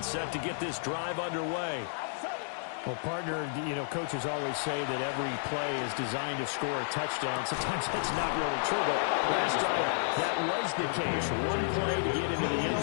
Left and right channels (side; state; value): right; silent; digital silence